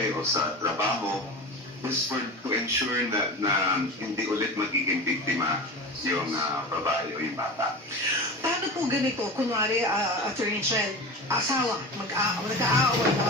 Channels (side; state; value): both; normal; correlation 0.29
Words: o sa trabaho, just to ensure na hindi ulit magiging biktima yung babae o yung bata. Paano po ganito? Kunwari, Attorney Shell, asawa, nag-aaway